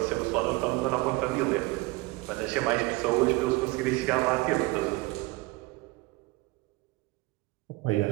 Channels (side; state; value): left; quieter; 22.7 dB